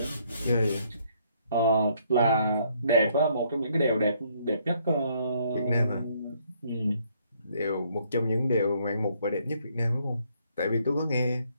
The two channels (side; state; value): both; inverted; correlation -0.68